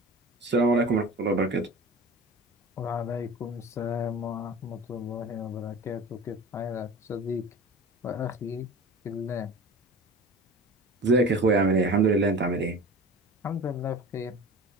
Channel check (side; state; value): both; normal; correlation 0.36